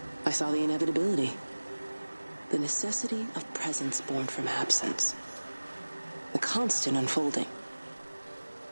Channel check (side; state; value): both; inverted; correlation -1.00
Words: I saw the inevitability. The necessity of presence born from absence. The constant unfolding.